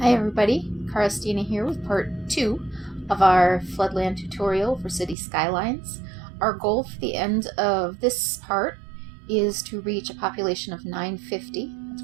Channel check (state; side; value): drops out; left; at 5.2 s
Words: Hi everybody, Karastina here with part 2 of our Floodland tutorial for City Skylines. Our goal for the end of this part is to reach a population of 950, that's